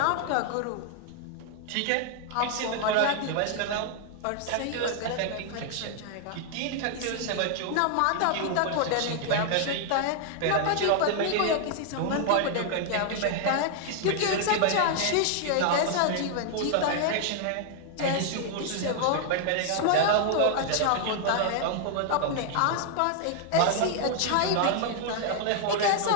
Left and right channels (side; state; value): both; different; correlation 0.00